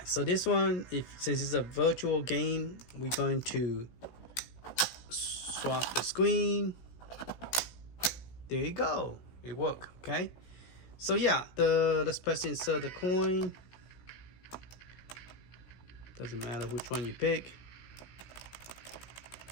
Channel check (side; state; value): right; late; 16 ms